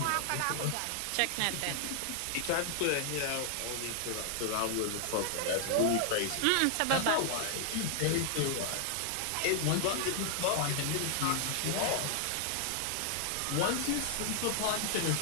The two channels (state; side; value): different; both; correlation 0.00